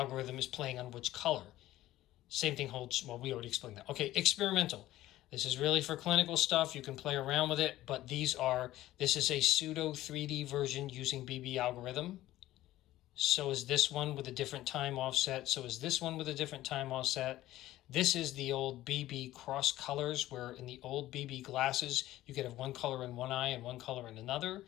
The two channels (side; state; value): right; quieter; 15.3 dB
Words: is playing on which color. Same thing holds, well, we already explained that. Okay, experimental. This is really for clinical stuff. You can play around with it, but this is a pseudo 3D version using BB algorithm. So is this one with a different time offset. So is this one with a different time offset. This is the old BB cross colors, where in the old BB glasses, you could have one color in one eye and one color in another.